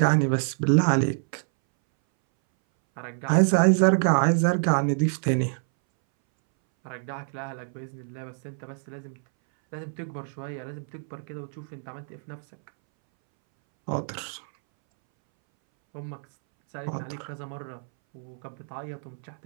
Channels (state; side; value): silent; left; 60 dB below the other